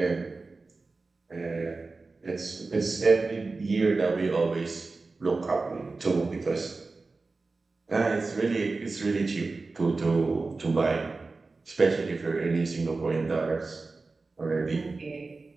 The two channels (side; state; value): left; quieter; 3.8 dB